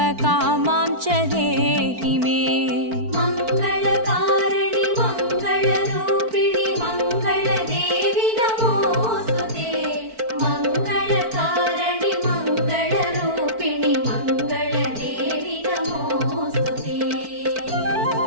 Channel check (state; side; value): late; left; 4.5 ms